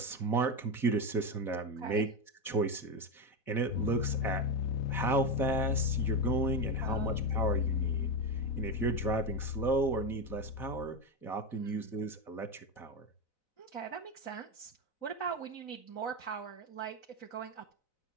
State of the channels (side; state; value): right; late; 4.0 ms